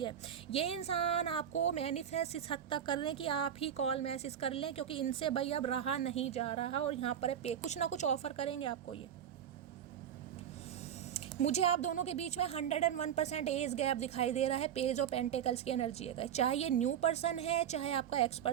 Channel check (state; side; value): quieter; left; 9.4 dB